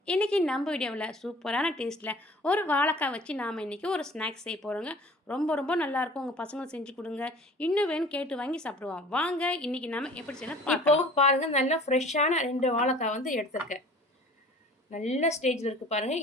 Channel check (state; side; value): normal; both; correlation 0.47